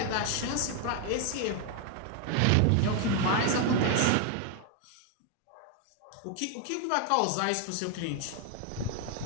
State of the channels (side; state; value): both; different; correlation 0.01